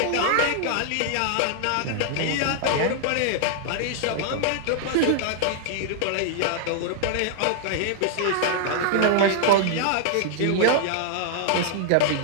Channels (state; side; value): different; both; correlation -0.01